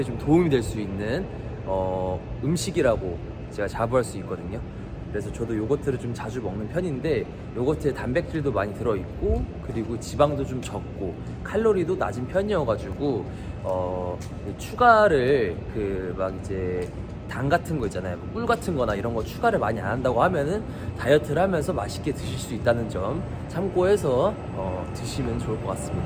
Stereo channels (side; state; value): both; identical; correlation 1.00